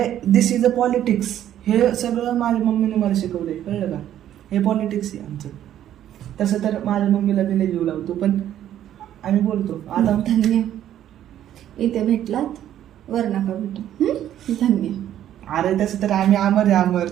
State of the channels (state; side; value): quieter; left; 11.4 dB